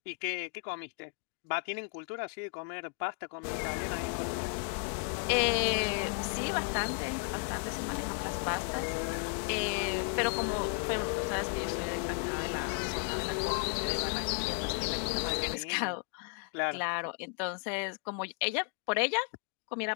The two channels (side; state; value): right; quieter; 37.7 dB